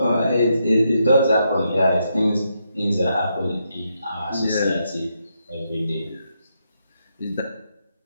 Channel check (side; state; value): both; inverted; correlation -0.81